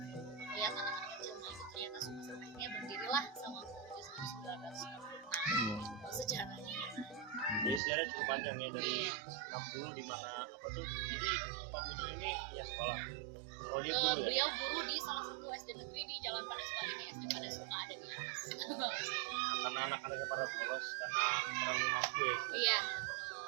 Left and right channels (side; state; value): left; drops out; at 7.8 s